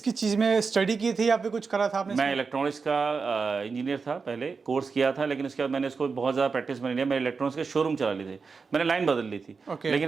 चीज़ में स्टडी की थी या फिर कुछ करा था आपने? मैं इलेक्ट्रॉनिक्स का इंजीनियर था, पहले कोर्स किया था, लेकिन उसके बाद मैंने इसको बहुत ज़्यादा प्रैक्टिस में नहीं लिया। मैंने इलेक्ट्रॉनिक्स के शोरूम चला लिए थे, मैंने लाइन बदल ली थी।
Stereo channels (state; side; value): quieter; left; 4.9 dB